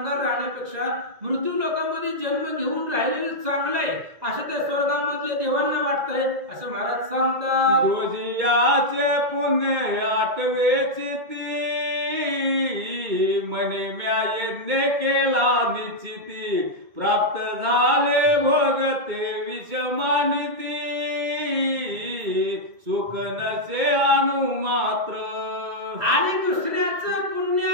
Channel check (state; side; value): late; left; 2.2 ms